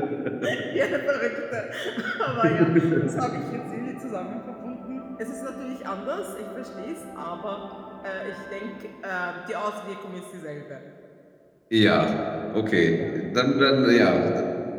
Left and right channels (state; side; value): identical; both; correlation 1.00